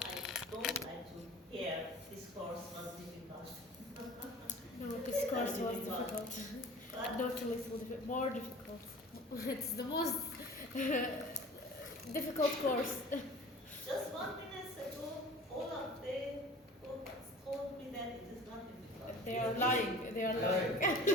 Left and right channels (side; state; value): both; normal; correlation 0.42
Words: don't like to hear this course was difficult. No, this course was Difficult. difficult. But Not a little difficult, more difficult. It's the most difficult course. just 1 minute ago, all of them told me that it is not difficult. They are lying. They are lying.